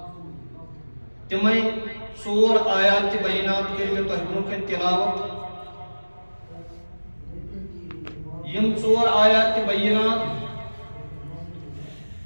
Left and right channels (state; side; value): inverted; both; correlation -1.00